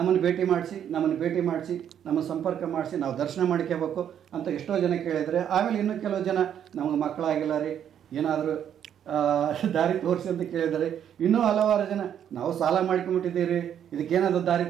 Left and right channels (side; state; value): left; quieter; 9.4 dB